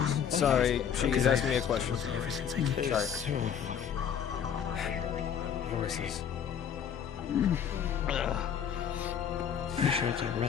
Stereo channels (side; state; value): right; quieter; 8.2 dB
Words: Sorry, she's asking me a question. Ever since I came. Sorry. Voices. Pretty sure it's our